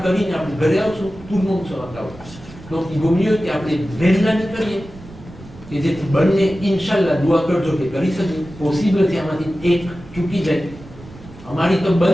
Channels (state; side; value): noise; right; rumble, 18 dB below the sound